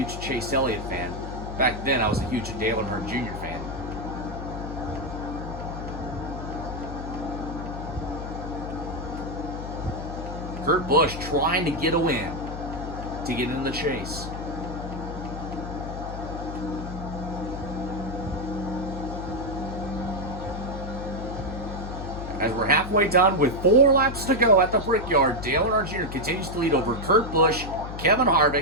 Chase Elliott fan. Back then, I was a huge Dale Earnhardt Jr. fan. Kurt Busch trying to get a win to get in the chase. As we're halfway done with 4 laps to go at the Brickyard, Dale Earnhardt Jr. continues to lead over Kurt Busch, Kevin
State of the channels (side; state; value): left; noise; hum, 8 dB below the sound